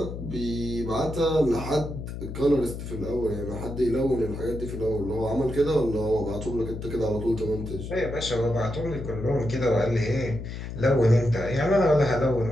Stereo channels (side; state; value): left; noise; hum, 8 dB below the sound